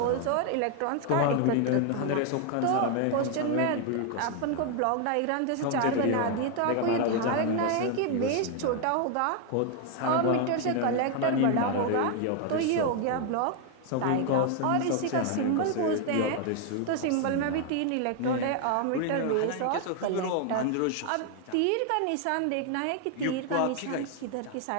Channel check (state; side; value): different; both; correlation 0.00